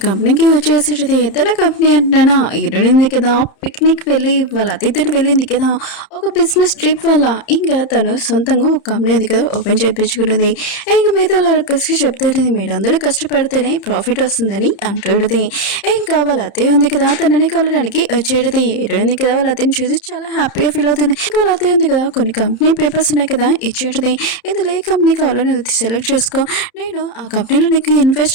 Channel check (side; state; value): right; late; 30 ms